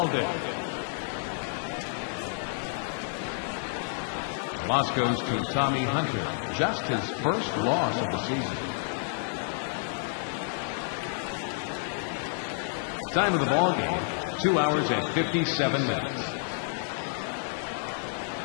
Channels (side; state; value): right; silent; 58 dB below the other